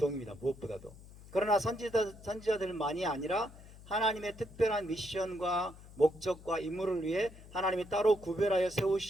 무엇보다도. 그러나 선지자들만이 아니라 하나님의 특별한 미션과 목적과 임무를 위해 하나님이 따로 구별하여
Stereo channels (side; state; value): left; noise; hum, 19 dB below the sound